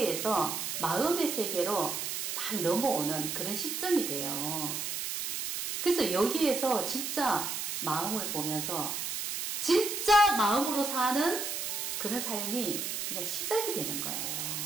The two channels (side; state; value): right; noise; hiss, 3 dB below the sound